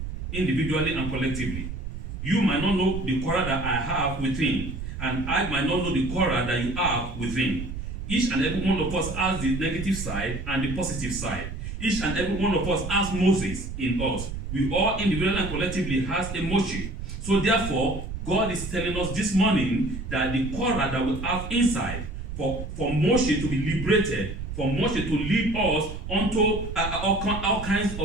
individually and collectively. You might not know the Korah that I have within, and I might not know the Korah that you have within. Each and every one of us has the negative side and the positive side. Each and every one of us has Moses in us. We all individually and collectively has a Moshe. So therefore, God is telling us this morning that the Korah that we have inside, for Moshe to be liberated, for Moshe to lead us onto all kinds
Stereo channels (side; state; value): right; noise; rumble, 7 dB below the sound